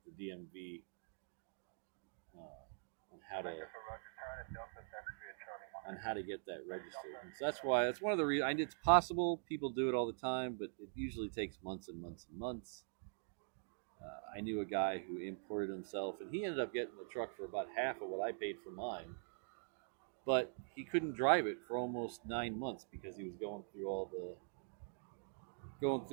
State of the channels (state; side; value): silent; left; digital silence